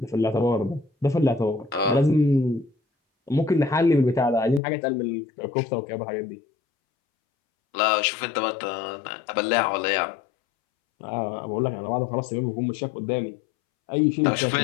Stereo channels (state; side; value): drops out; right; at 4.6 s